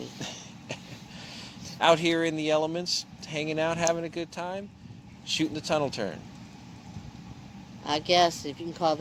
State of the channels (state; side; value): identical; both; correlation 1.00